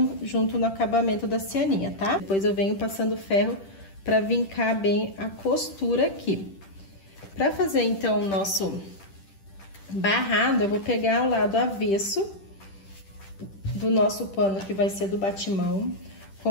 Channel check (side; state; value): right; late; 10 ms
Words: junto no acabamento da cianinha, tá? Depois eu venho passando o ferro pra vincar bem a costura aqui. Pra fazer, então, o nosso barrado, eu vou pegar o lado avesso do nosso pano, que vai ser do batimão,